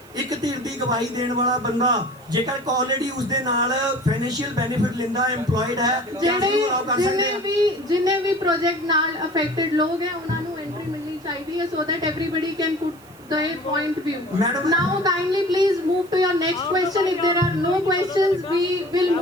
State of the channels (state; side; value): noise; right; hiss, 27 dB below the sound